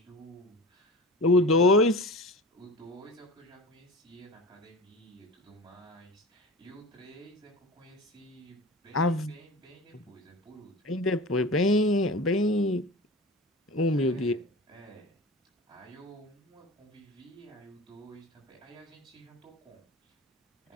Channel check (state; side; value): normal; both; correlation 0.34